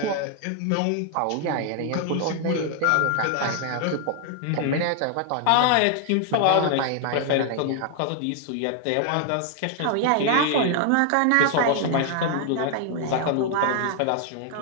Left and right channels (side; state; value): both; different; correlation 0.00